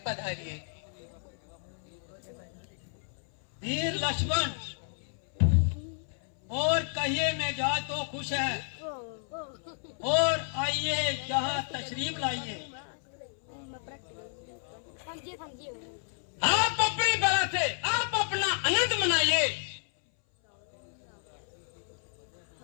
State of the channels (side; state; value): right; silent; 57 dB below the other